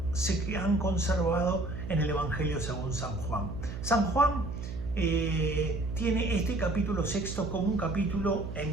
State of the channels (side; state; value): right; noise; hum, 7 dB below the sound